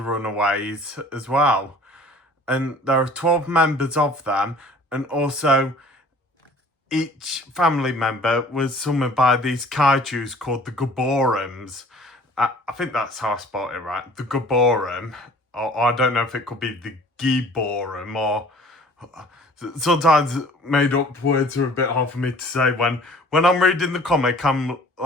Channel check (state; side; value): normal; both; correlation 0.50